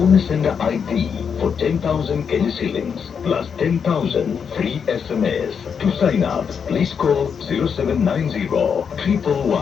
sender ID for 10,000 Kenya shillings plus 10,000 free SMS. To sign up, please call 0790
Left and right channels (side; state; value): right; quieter; 6.7 dB